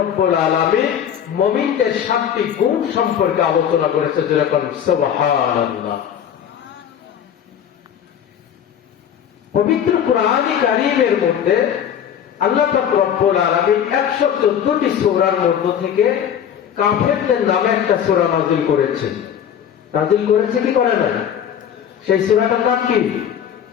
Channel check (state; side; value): quieter; right; 9.1 dB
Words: আলামিন মুমিনদের 7টি গুণ সম্পর্কে আলোচনা করেছে। যেরকম সুবহানাল্লাহ। পবিত্র কোরআনে কারীমের মধ্যে আল্লাহ পাক রব্বুল আলামিন 114টি সূরার মধ্য থেকে কাফেরদের নামে একটা সূরা নাযিল করেছে। নাযিল করেছে কি করে না? সেই সূরাটার নাম কি?